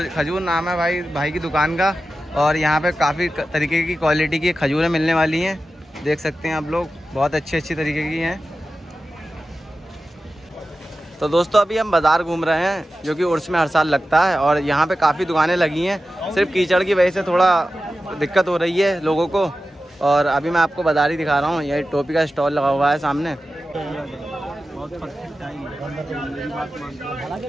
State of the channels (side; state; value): both; normal; correlation 0.93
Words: खजूर नाम है भाई की दुकान का। और यहाँ पे काफ़ी तरीके की क्वालिटी की खजूरें मिलने वाली हैं। देख सकते हैं आप लोग, बहुत अच्छी तरीके की हैं। तो दोस्तों अभी हम बाज़ार घूम रहे हैं, जो कि उर्स में हर साल लगता है, और यहाँ पे काफ़ी दुकानें लगी हैं। सिर्फ कीचड़ की वजह से थोड़ा दिक्कत हो रही है लोगों को। और अभी मैं आपको बाज़ार ही दिखा रहा हूँ। ये टोपी का स्टॉल लगा हुआ है सामने।